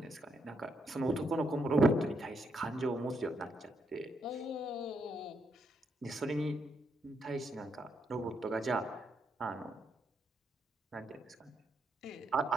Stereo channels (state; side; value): normal; both; correlation 0.78